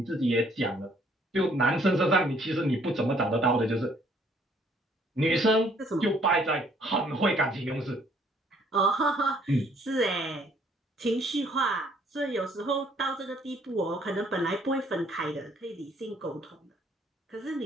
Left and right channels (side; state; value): both; normal; correlation 0.63